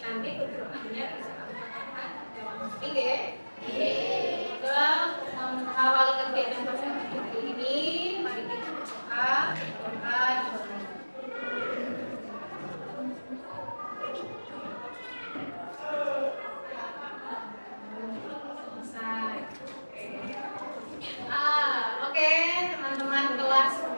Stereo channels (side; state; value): both; inverted; correlation -1.00